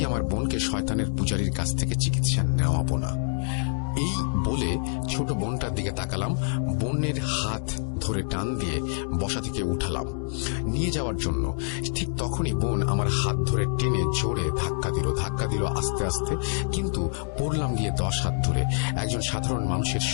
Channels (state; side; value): silent; right; 61 dB below the other